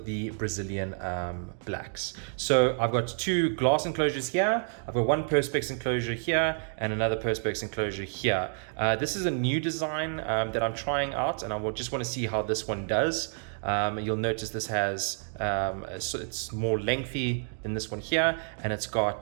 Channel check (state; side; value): silent; left; 58 dB below the other